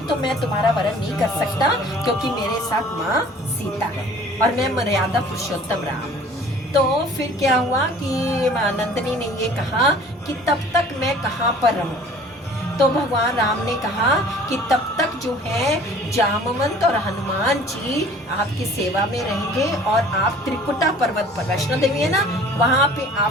तो मैं तुम्हारा वरण नहीं कर सकता क्योंकि मेरे साथ माँ सीता है और मैं मर्यादा पुरुषोत्तम राम। तो फिर क्या हुआ कि नंदनी ने ये कहा कि तब तक मैं कहाँ पर रहूं। तो भगवान राम ने कहा कि तब तक जो है जामवंत और हनुमान जी आपकी सेवा में रहेंगे और आप त्रिकुटा पर्वत पर, वैष्णो देवी है ना, वहां पे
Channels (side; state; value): both; normal; correlation 0.49